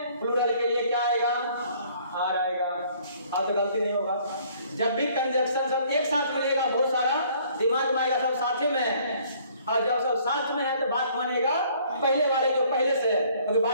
प्लूरल के लिए क्या आएगा, आर आएगा। अब तो गलती नहीं होगा। जब भी कंजक्शन सब एक साथ मिलेगा बहुत सारा, दिमाग में आएगा सब साथ में है, और जब सब साथ में है तो बात मानेगा पहले वाले जो पहले से है, क्योंकि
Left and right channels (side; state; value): both; inverted; correlation -0.59